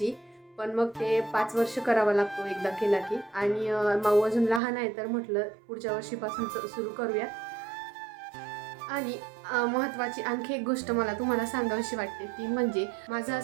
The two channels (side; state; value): left; drops out; at 4.6 s